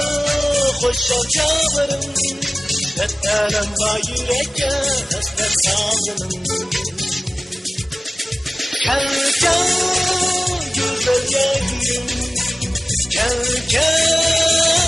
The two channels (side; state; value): both; normal; correlation 0.96